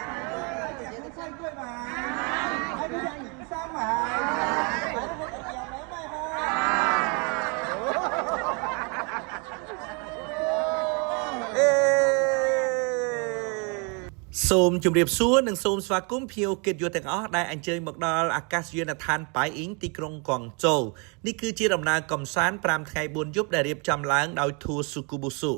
食蔬菜粿嘛，来食盐山嘛，来我食盐梅嘛សូមជម្រាបសួរនិងសូមស្វាគមន៍ភ្ញៀវកិត្តិយសទាំងអស់ដែលអញ្ជើញមកដល់អាកាសយានដ្ឋានប៉ៃអ៊ីងទីក្រុងកួងជូនេះគឺជាដំណើរកំសាន្ត5ថ្ងៃ4យប់ដែលរៀបចំឡើងដោយ Tour Sukubusu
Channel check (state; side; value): quieter; left; 33.8 dB